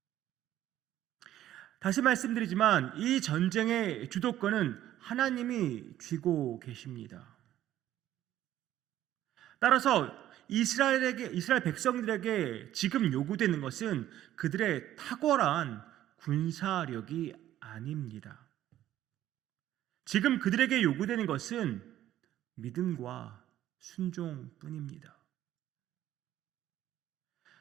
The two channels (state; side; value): quieter; left; 12.8 dB